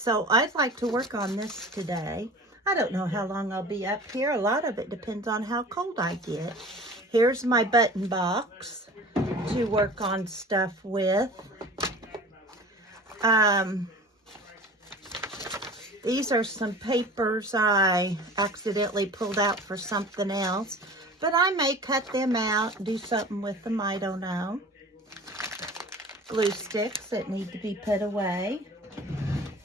So I'd like to work on this today. I don't know how long I'll be up here. A lot of it depends on how cold I get. Here's my button box to work on stuff with. These are some papers I accidentally pulled out for something else, but I may cut them out and do something with them, I don't know. Glue sticks that need to be put away.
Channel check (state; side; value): normal; both; correlation 0.40